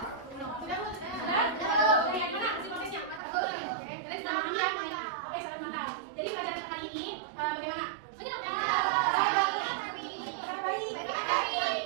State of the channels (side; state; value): left; drops out; at 3.2 s